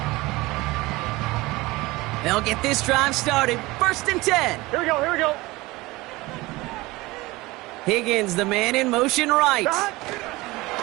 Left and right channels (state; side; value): quieter; left; 21.1 dB